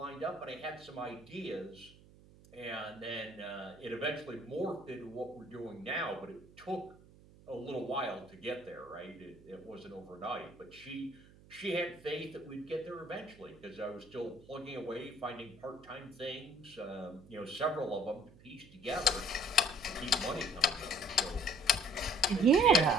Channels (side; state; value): right; noise; hum, 23 dB below the sound